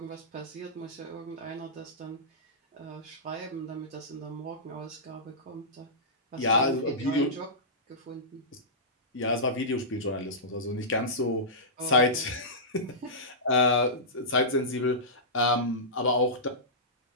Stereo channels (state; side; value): normal; both; correlation -0.17